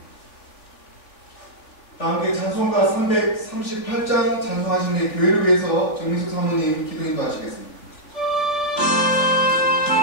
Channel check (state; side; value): late; right; 3.4 ms